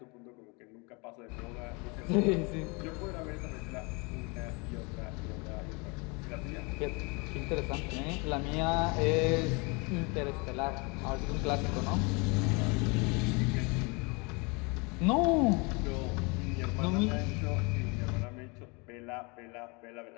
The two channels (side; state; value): right; quieter; 29.8 dB